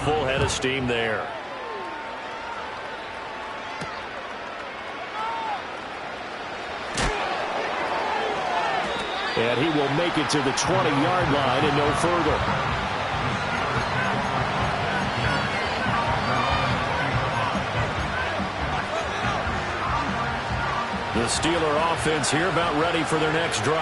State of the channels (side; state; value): both; identical; correlation 1.00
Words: full head of steam there. And he will make it to the 20-yard line and no further. The Steeler offense here about ready for their next